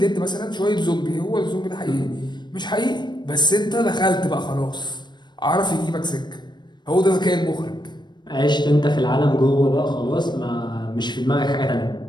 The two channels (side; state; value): right; late; 0.21 ms